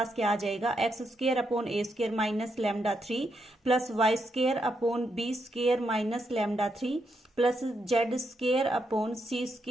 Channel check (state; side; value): normal; both; correlation 0.80